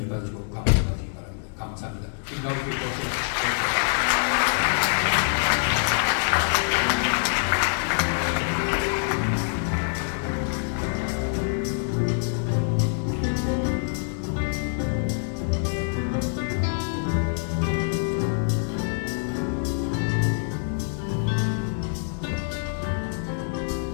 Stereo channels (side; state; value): right; silent; 61 dB below the other